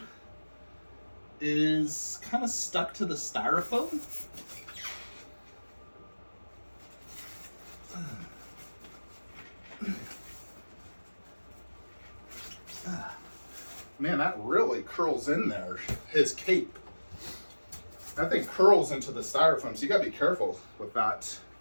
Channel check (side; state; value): both; inverted; correlation -1.00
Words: is kind of stuck to the styrofoam. Man, that really curls in there. His cape. That thing curls into the styrofoam, so you gotta be careful with that.